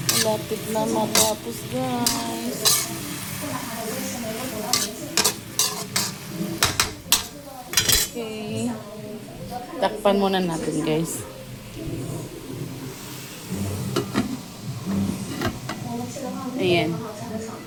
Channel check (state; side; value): identical; both; correlation 1.00